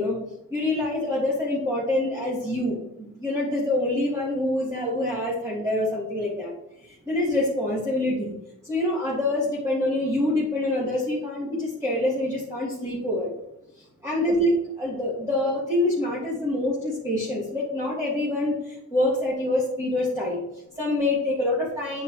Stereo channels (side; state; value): both; normal; correlation 0.42